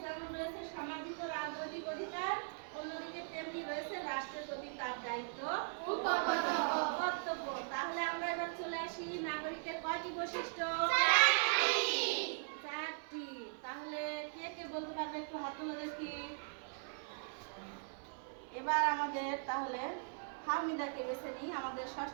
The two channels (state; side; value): silent; left; 51 dB below the other